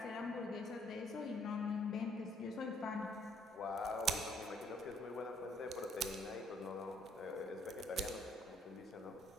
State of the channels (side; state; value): both; normal; correlation 0.65